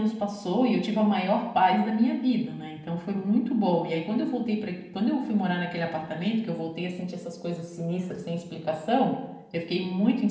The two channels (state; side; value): identical; both; correlation 1.00